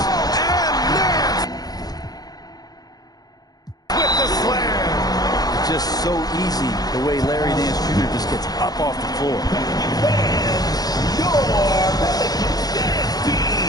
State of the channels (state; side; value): late; right; 0.19 ms